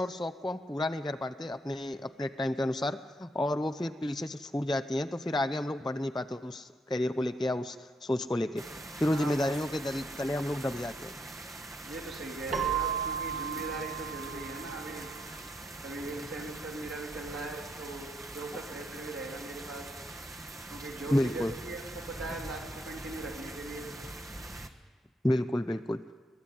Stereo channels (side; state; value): both; normal; correlation 0.79